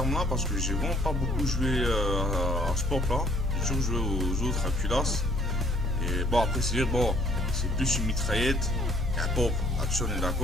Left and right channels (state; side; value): normal; both; correlation 0.58